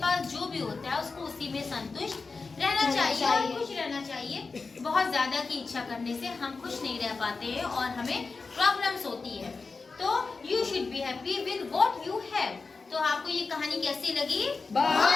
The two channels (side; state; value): right; quieter; 4.3 dB